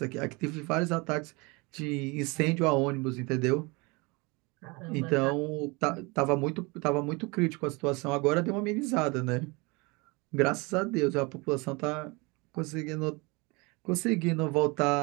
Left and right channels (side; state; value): left; quieter; 26.9 dB